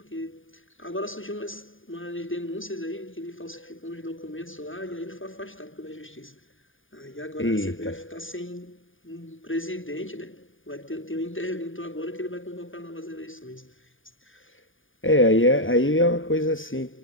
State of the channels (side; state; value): right; late; 0.58 ms